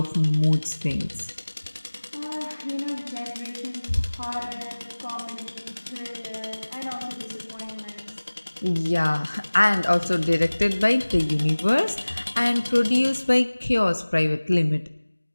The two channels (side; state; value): both; inverted; correlation -1.00